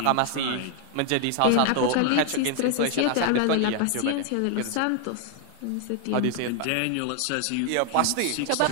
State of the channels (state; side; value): different; both; correlation 0.00